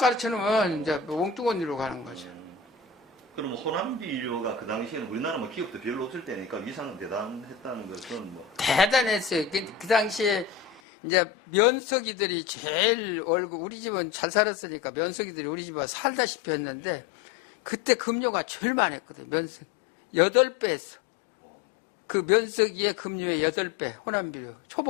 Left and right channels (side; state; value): right; drops out; at 10.8 s